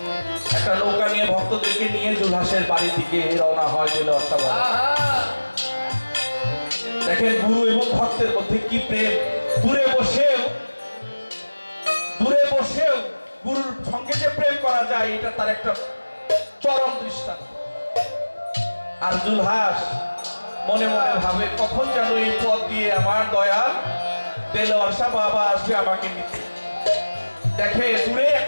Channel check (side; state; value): both; inverted; correlation -1.00